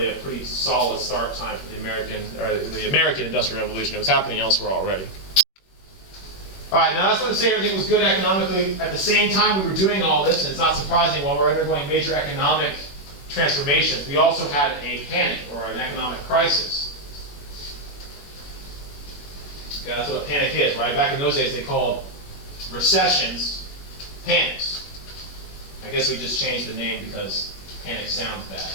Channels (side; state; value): right; late; 21 ms